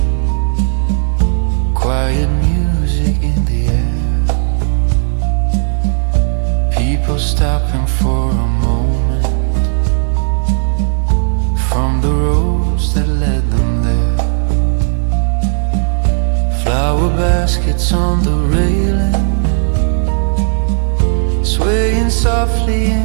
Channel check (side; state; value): left; silent; digital silence